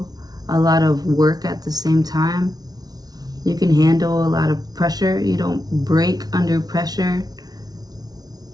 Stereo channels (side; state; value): left; late; 0.19 ms